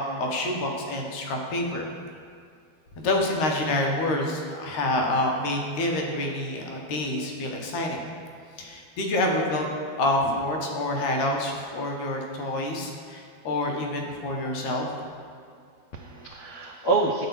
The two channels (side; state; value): right; late; 13 ms